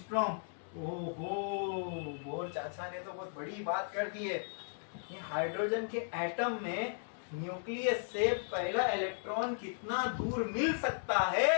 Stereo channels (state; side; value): silent; right; digital silence